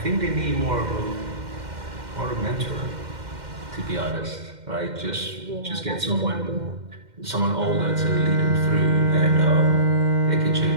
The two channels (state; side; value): late; left; 2.1 ms